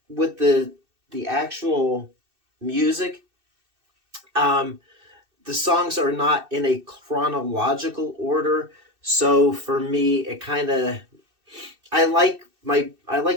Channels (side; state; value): left; late; 2.6 ms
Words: with the actual music, um, the songs are not in a chronological order. So for me, it kind of I like